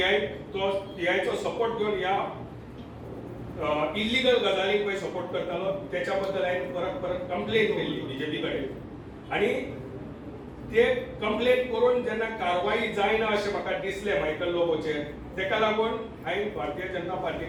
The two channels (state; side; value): identical; both; correlation 1.00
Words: सपोर्ट घेवन ह्या इल्लीगल गजालींक पळय सपोर्ट करतालो त्याच्या बद्दल हांवें परत परत कंप्लेन केल्ली बीजेपी कडेन आनी ते कंप्लेन करून जेन्ना कारवाई जायना अशें म्हाका दिसलें मायकल लोबोचेर तेका लागून हांवें भारतीय जनता पार्टी